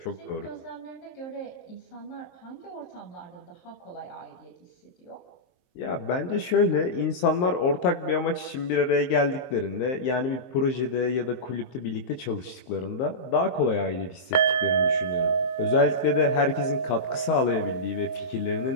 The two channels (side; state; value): right; late; 23 ms